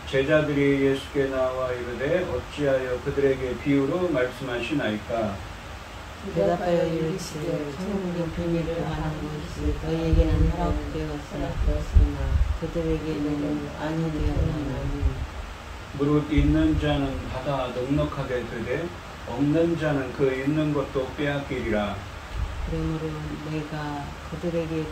제자들이 예수께 나와 이르되 어찌하여 그들에게 비유로 말씀하시나이까? 대답하여 이르시되 천국의 비밀을 아는 것이 너희에게는 허락되었으나 그들에게는 아니되었나니 무릇 있는 자는 받아 넉넉하게 되되 없는 자는 그 있는 것도 빼앗기리라. 그러므로 내가 그들에게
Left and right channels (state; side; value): identical; both; correlation 1.00